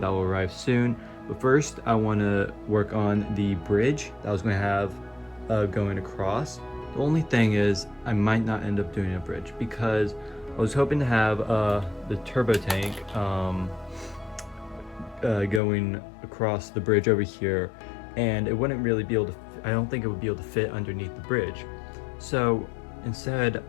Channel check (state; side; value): drops out; right; at 15.6 s